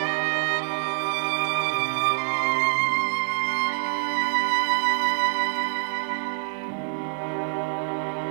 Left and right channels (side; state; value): left; silent; 61 dB below the other